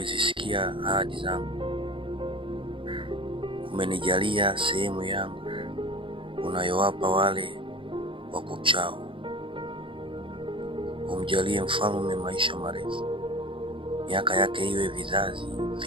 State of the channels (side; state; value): left; late; 0.25 ms